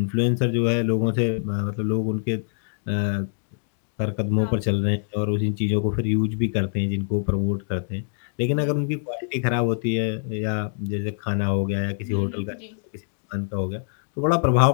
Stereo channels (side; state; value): right; silent; digital silence